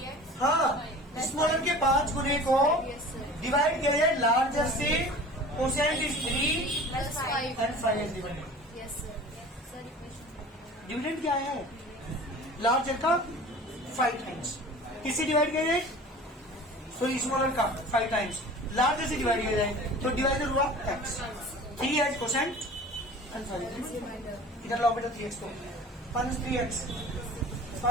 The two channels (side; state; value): both; normal; correlation 0.41